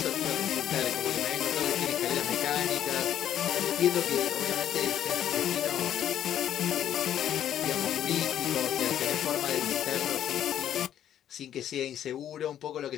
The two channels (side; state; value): right; quieter; 10.6 dB